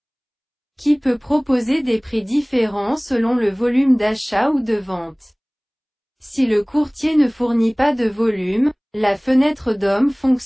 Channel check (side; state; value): both; identical; correlation 1.00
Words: qui peut proposer des prix différents selon le volume d'achat ou de vente. Si le courtier ne fournit pas de volume, la fenêtre DOM